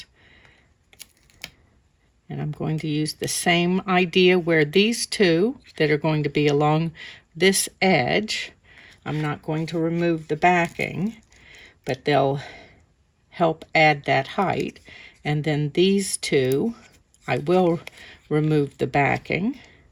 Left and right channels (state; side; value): identical; both; correlation 1.00